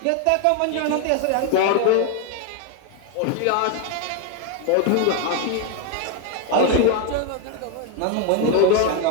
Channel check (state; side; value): different; both; correlation 0.01